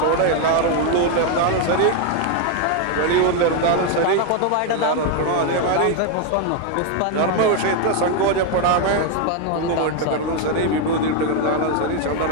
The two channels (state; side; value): different; both; correlation 0.01